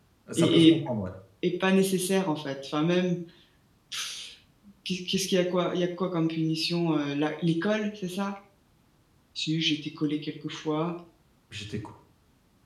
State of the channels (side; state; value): both; identical; correlation 1.00